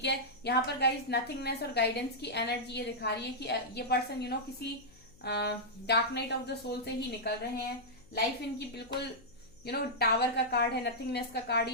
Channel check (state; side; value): noise; left; hum, 26 dB below the sound